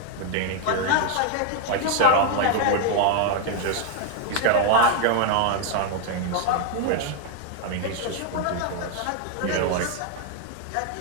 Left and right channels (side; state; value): both; different; correlation 0.00